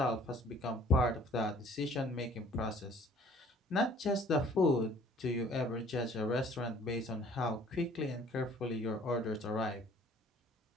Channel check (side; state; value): both; normal; correlation 0.55